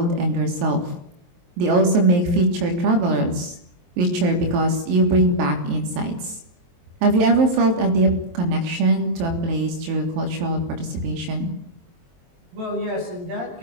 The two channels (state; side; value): late; left; 23 ms